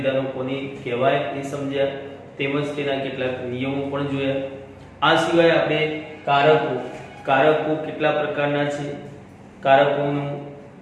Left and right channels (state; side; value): identical; both; correlation 1.00